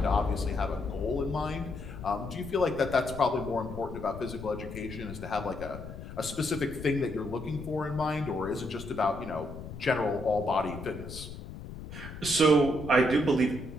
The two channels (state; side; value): noise; left; rumble, 11 dB below the sound